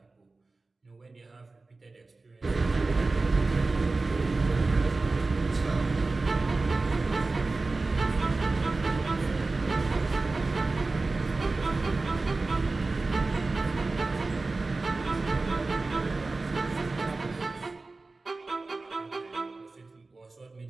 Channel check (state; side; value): quieter; left; 3.5 dB